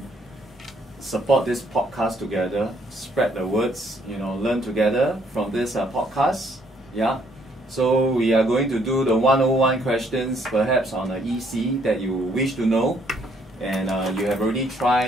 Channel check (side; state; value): both; normal; correlation 0.67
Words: support this podcast together, spread the words, learn together from this podcast. Yeah. So we are going to do the 101 questions, perhaps on the EC that you wish to know, and you have already